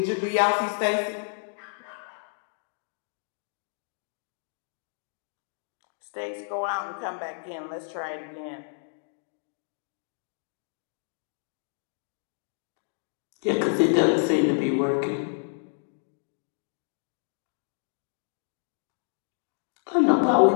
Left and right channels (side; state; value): right; silent; digital silence